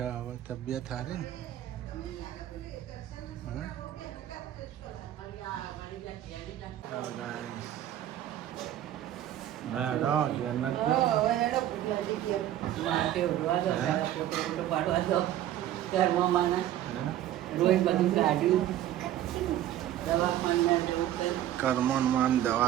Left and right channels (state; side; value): quieter; left; 12.5 dB